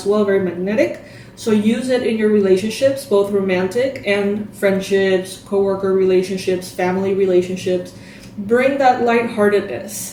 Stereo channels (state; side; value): identical; both; correlation 1.00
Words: well, very magnetic. So use it in your relationships, both romantic and friendships, coworker relationships, family relationships. Bring that